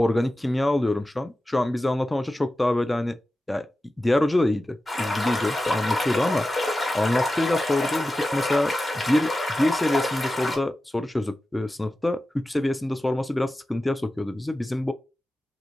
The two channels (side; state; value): both; normal; correlation 0.94